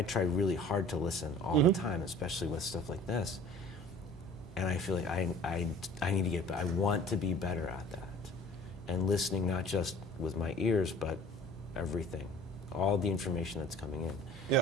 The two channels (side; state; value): both; normal; correlation 0.47